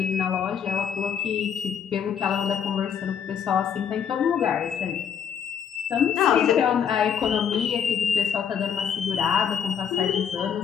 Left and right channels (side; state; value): right; quieter; 8.0 dB